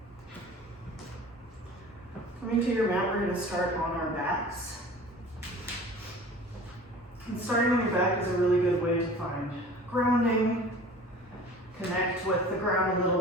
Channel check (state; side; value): normal; both; correlation 0.43